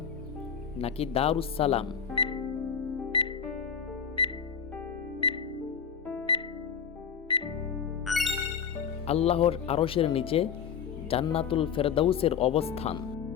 নাকি দারুস সালাম। আল্লাহর আরশের নিচে জান্নাতুল ফেরদাউসের অবস্থান।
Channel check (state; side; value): quieter; right; 7.3 dB